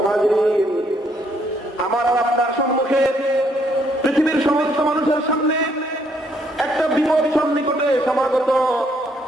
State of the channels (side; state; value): both; normal; correlation 0.70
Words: হাজিরিন, আমার আর আপনার সম্মুখে পৃথিবীর সমস্ত মানুষের সামনে একটা বিপদ সন্নিকটে সমাগত।